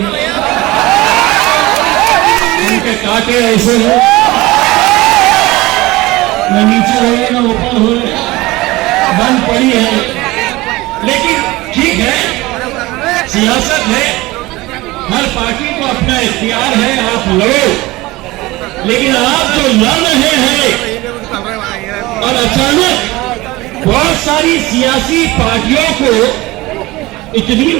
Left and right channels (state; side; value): quieter; left; 20.1 dB